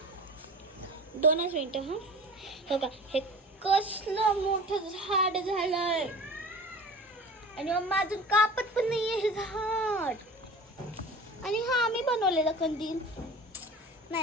2 मिनिटं हा. बघा हे कसलं मोठं झाड झालंय आणि मम्मा अजून कापत पण नाहीये हे झाड. आणि हा आम्ही बनवलेला कंदील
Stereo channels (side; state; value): both; normal; correlation 0.39